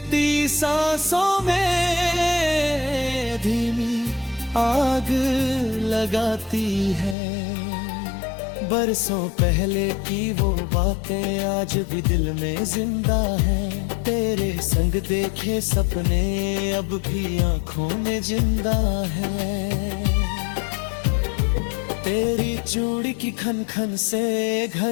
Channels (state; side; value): drops out; right; at 7.2 s